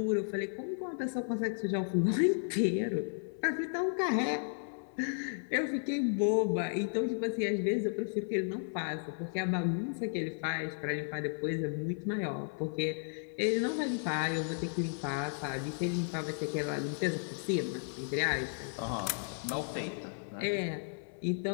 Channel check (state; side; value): silent; right; 55 dB below the other